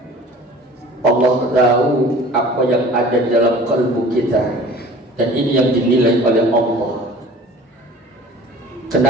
Allah tahu apa yang ada di dalam kalbu kita, dan ini yang dinilai oleh Allah.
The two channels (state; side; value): normal; both; correlation 0.45